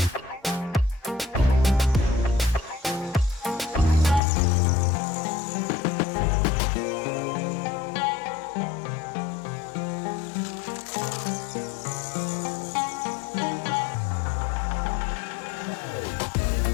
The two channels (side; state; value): right; drops out; at 4.2 s